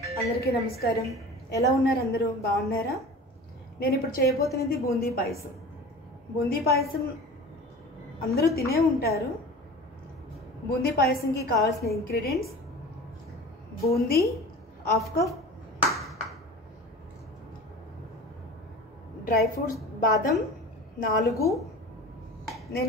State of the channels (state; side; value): normal; both; correlation 0.37